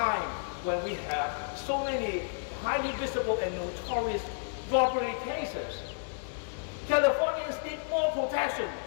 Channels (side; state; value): right; silent; digital silence